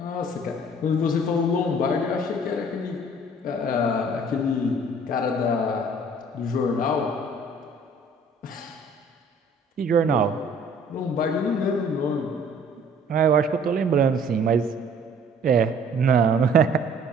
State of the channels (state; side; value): normal; both; correlation 0.54